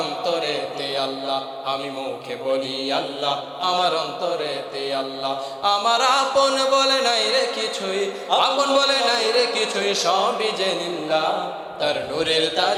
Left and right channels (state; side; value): identical; both; correlation 1.00